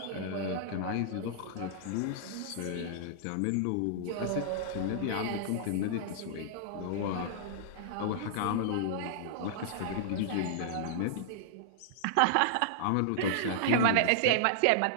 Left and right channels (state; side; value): different; both; correlation -0.01